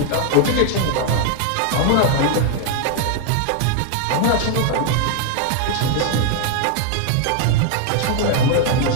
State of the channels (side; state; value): both; different; correlation 0.00